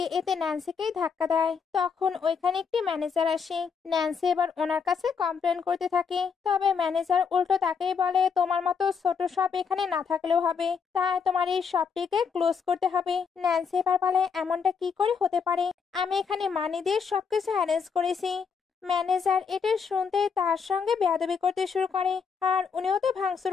এতে ন্যান্সিকেই ধাক্কা দেয়। তখন ওইখানে একটি ম্যানেজার আসে। ন্যান্সি এবার ওনার কাছে কমপ্লেন করতে থাকে, তবে ম্যানেজার উল্টো তাকেই বলে, তোমার মতো ছোট শপ এখানে না থাকলেও হবে, তাই তোমার এই শপটিকে ক্লোজ করতে হবে। ন্যান্সি এবার বলে, এমনটা কি করে হতে পারে, আমি এখানে মানি দিয়ে সবকিছু অ্যারেঞ্জ করেছি। ম্যানেজার এটা শুনতেই তার সঙ্গে বেয়াদবি করতে শুরু করে, আর উনিও তো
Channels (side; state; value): right; quieter; 6.1 dB